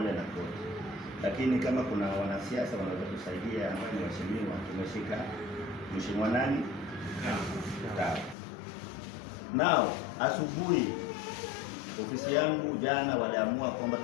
na koti, lakini kama kuna wanasiasa wanaweza kusaidia ambao ni waheshimiwa, tumeshika mheshimiwa nani? Sawa. Nao asubuhi ofisi yangu jana waliamua kwamba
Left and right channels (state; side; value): drops out; right; at 8.3 s